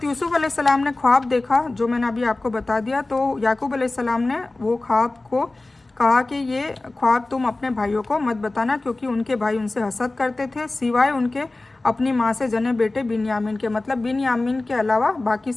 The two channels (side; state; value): right; quieter; 3.0 dB